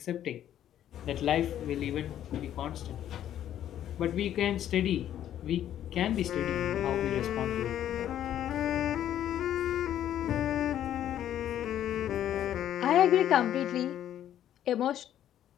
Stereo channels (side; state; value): right; quieter; 11.1 dB